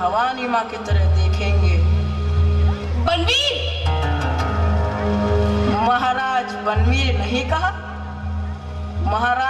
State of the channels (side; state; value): both; identical; correlation 1.00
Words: माँ की तरह देखेंगे। बनवीर, महाराज बनवीर नहीं कहा?